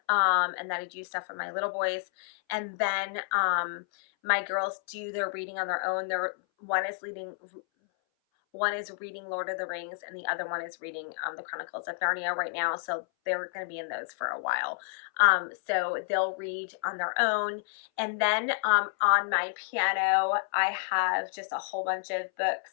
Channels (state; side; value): silent; right; 58 dB below the other